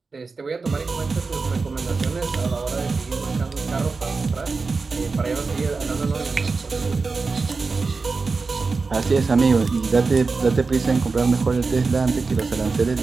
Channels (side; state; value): left; quieter; 4.3 dB